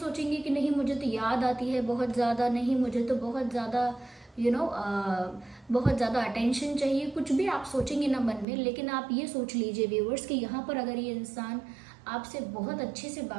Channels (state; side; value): drops out; left; at 8.5 s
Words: कि नहीं मुझे तो याद आती है बहुत ज़्यादा, नहीं मुझे तो बहुत ज़्यादा बहुत ज़्यादा अटेंशन चाहिए, कुछ भी आप सोचेंगे ना मन में। लेकिन आप ये सोच लीजिए व्यूअर्स कि यहाँ पर अगर ये इंसान आपसे बहुत अच्छे से